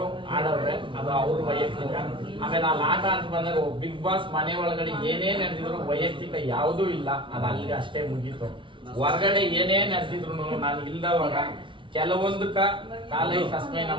ಆಡೋರೆ, ಅದು ಅವ್ರ ವೈಯಕ್ತಿಕ. ಆಮೇಲೆ ಅಲ್ಲಿ ಆಟ ಅಂತ ಬಂದಾಗ ಬಿಗ್ ಬಾಸ್ ಮನೆ ಒಳಗಡೆ ಏನೇ ನಡೆದಿದ್ರು ವೈಯಕ್ತಿಕ ಯಾವುದೂ ಇಲ್ಲ, ಅದು ಅಲ್ಲಿಗೆ ಅಷ್ಟೇ ಮುಗೀತು. ಹೊರಗಡೆ ಏನೇ ನಡೆದಿದ್ರು ನಾನು ಇಲ್ದವಾಗ ಕೆಲವೊಂದಕ್ಕ ಕಾಲೈ ಕಸ್ಮೈ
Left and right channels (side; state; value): left; late; 0.24 ms